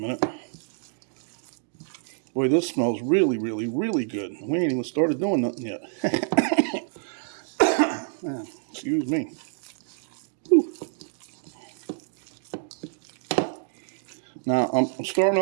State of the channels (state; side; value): silent; left; digital silence